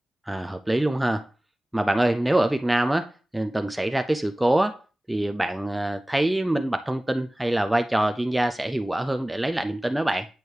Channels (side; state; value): both; normal; correlation 0.98